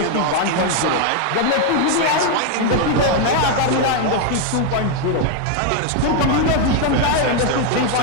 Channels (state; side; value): different; both; correlation 0.01